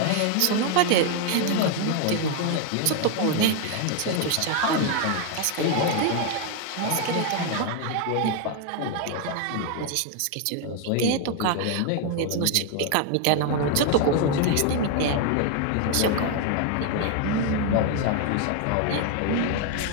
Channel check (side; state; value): both; different; correlation 0.01